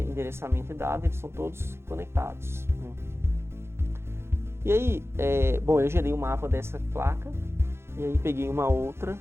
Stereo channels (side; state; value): left; late; 0.12 ms